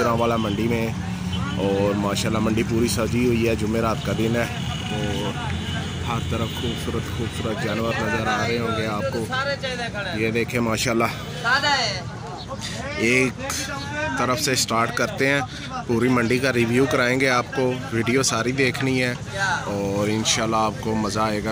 मंडी में और माशाल्लाह मंडी पूरी सजी हुई है। जुमेरात का दिन है और हर तरफ खूबसूरत जानवर नज़र आ रहे होंगे आपको। ये देखें माशाल्लाह, एक तरफ से स्टार्ट करते हैं। पूरी मंडी का रिव्यू कराएंगे आपको। वीडियो सारी देखनी है और इंशाल्लाह आपको मज़ा आएगा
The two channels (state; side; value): identical; both; correlation 1.00